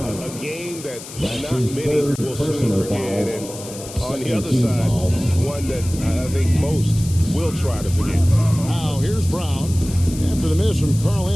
A game that not many will soon forget, and on the other side, one that I think most will try to forget. Now, here's Brown. After the miss from Karl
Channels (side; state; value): left; noise; hiss, 14 dB below the sound